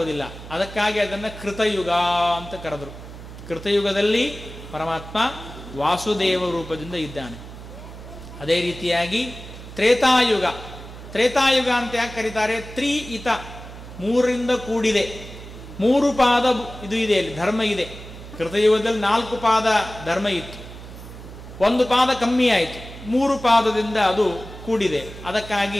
ಅದಕ್ಕಾಗಿ ಅದನ್ನು ಕೃತಯುಗ ಅಂತ ಕರೆದರು. ಕೃತಯುಗದಲ್ಲಿ ಪರಮಾತ್ಮ ವಾಸುದೇವ ರೂಪದಿಂದ ಇದ್ದಾನೆ. ಅದೇ ರೀತಿಯಾಗಿ ತ್ರೇತಾಯುಗ, ತ್ರೇತಾಯುಗ ಅಂತ ಯಾಕೆ ಕರೀತಾರೆ? ತ್ರಿಇತ, 3ರಿಂದ ಕೂಡಿದೆ, 3 ಪಾದ ಇದು ಇದೆ, ಅಲ್ಲಿ ಧರ್ಮ ಇದೆ. ಕೃತಯುಗದಲ್ಲಿ 4 ಪಾದ ಧರ್ಮ ಇತ್ತು, 1 ಪಾದ ಕಮ್ಮಿ ಆಯಿತು, 3 ಪಾದದಿಂದ ಅದು ಕೂಡಿದೆ.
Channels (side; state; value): right; noise; hum, 14 dB below the sound